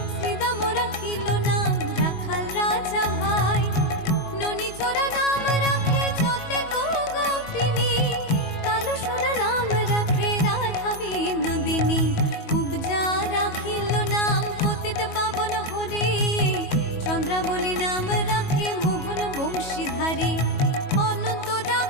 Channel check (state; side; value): late; right; 22 ms